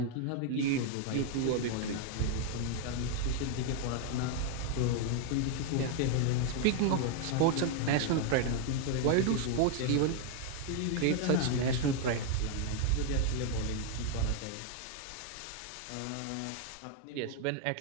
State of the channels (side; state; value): both; different; correlation 0.00